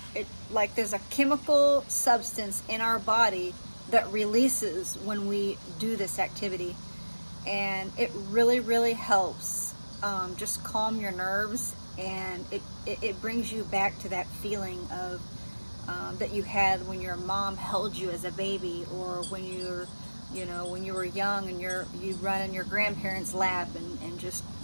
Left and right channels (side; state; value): both; inverted; correlation -1.00